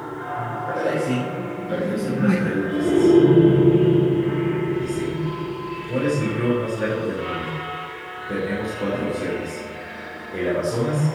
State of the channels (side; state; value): both; identical; correlation 1.00